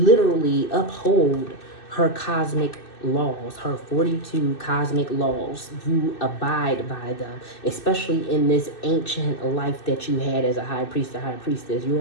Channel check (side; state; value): right; late; 2.6 ms